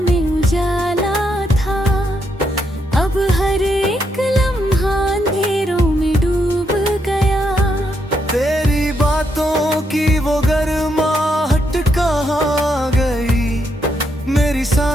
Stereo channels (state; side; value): normal; both; correlation 0.78